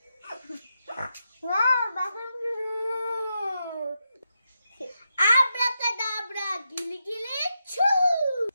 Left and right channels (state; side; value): inverted; both; correlation -0.86